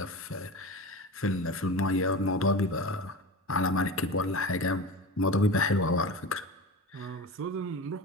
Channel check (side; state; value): both; normal; correlation 0.30